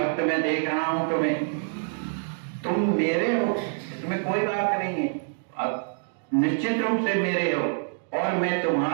में देख रहा हूं तुम्हें, तुम मेरे हो, इसमें कोई बात नहीं है, अब निश्चित रूप से मेरे हो। और मैं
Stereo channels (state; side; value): silent; left; digital silence